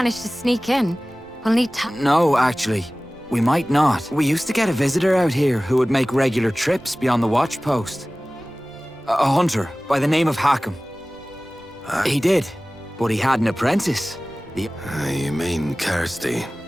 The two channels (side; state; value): both; normal; correlation 0.98